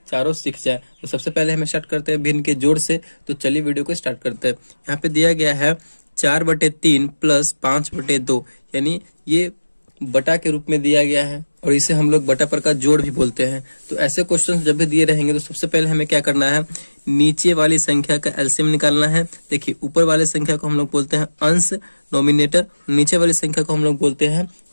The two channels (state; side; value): inverted; both; correlation -1.00